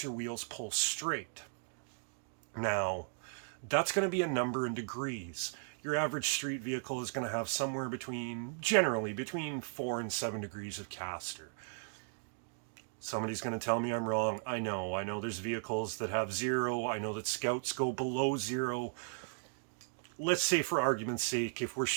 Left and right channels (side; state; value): left; silent; digital silence